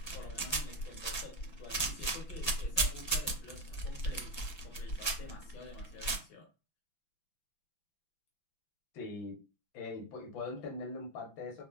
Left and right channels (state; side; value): late; right; 6.0 ms